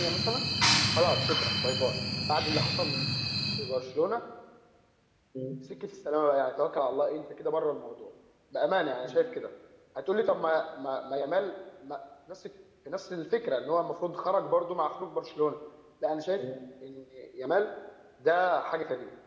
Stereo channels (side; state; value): both; identical; correlation 1.00